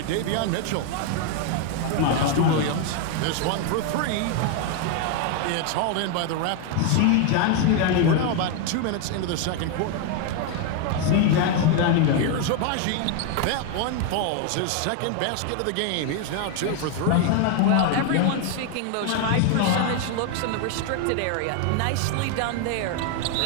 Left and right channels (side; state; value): both; different; correlation 0.01